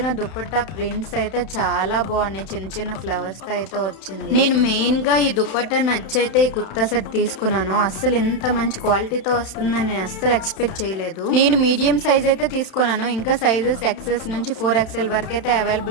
దుపట్టా ప్రింట్స్ అయితే చాలా బాగున్నాయి. చిన్న చిన్న ఫ్లవర్స్ తో అయితే వచ్చింది. నేను మెయిన్ గా ఈ దుపట్టా నచ్చైతే ఈ కుర్తా సెట్ తీసుకున్నాను. అస్సలు ఇంత మంచి క్వాలిటీతో వస్తుందని నేను అస్సలు ఎక్స్పెక్ట్ చేయలేదు. నేను మీడియం సైజ్ అయితే తీసుకున్నాను. ఇంకా సైజెస్ ఎక్సెస్ నుంచి 4XL వరకు అయితే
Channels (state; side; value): late; right; 31 ms